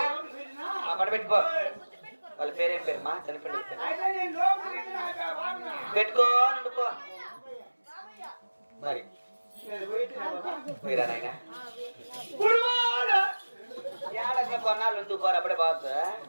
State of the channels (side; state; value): both; inverted; correlation -1.00